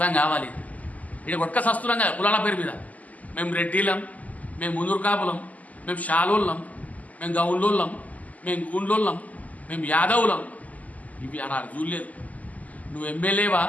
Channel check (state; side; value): late; right; 0.076 ms